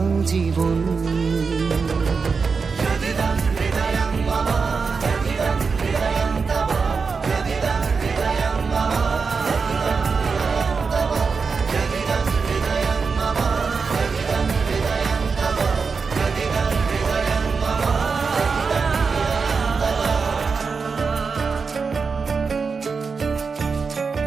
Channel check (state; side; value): quieter; left; 5.0 dB